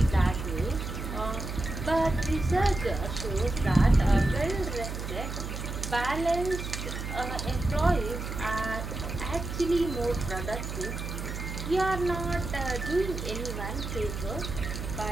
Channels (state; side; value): noise; right; hum, 6 dB below the sound